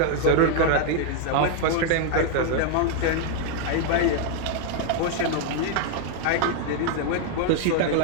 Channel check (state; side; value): different; both; correlation 0.00